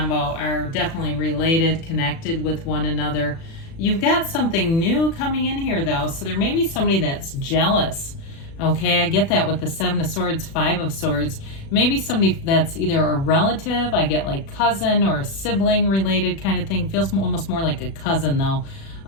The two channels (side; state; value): right; late; 36 ms